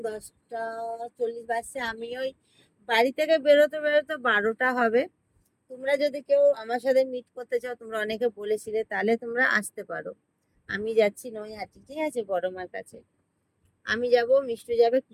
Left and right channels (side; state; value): both; identical; correlation 1.00